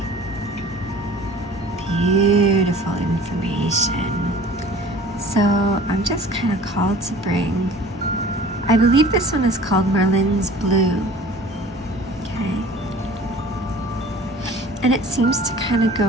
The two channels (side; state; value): both; normal; correlation 0.46